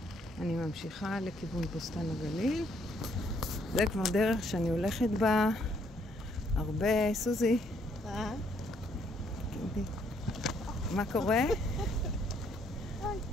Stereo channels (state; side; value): normal; both; correlation 0.69